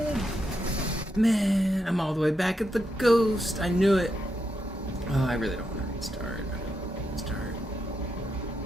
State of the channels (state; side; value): normal; both; correlation 0.83